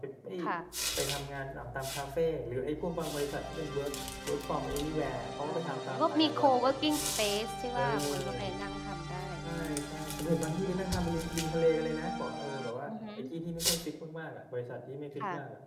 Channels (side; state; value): both; identical; correlation 1.00